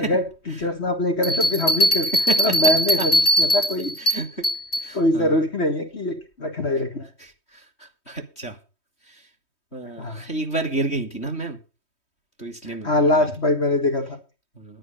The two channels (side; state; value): right; late; 3.2 ms